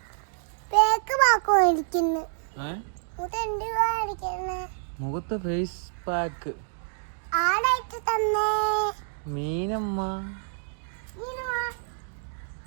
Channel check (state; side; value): silent; left; digital silence